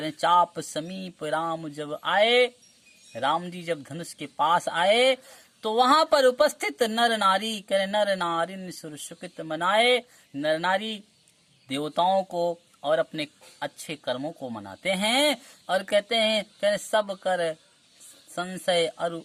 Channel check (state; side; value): identical; both; correlation 1.00